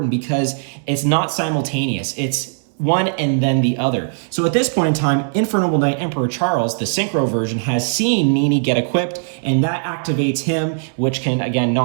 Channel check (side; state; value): left; silent; 64 dB below the other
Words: because it's not simultaneous. It's one and then the other. So at this point in time, Infernoble Knight Emperor Charles, the synchro version, has seen Nini get equipped, and that activates him, which can, again,